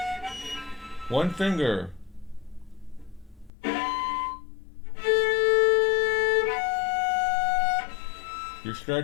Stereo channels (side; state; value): right; drops out; at 3.5 s